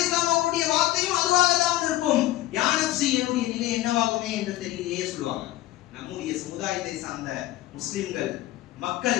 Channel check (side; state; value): right; quieter; 15.9 dB